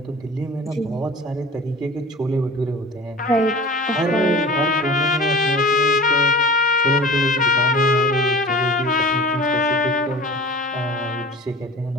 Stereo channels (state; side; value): normal; both; correlation 0.39